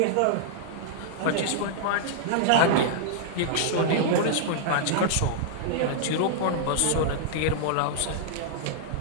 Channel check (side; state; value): both; different; correlation -0.01